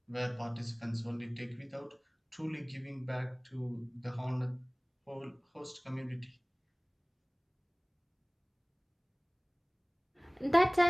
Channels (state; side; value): identical; both; correlation 1.00